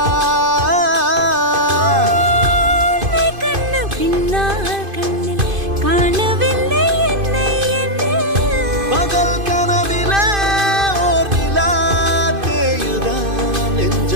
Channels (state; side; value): late; left; 2.5 ms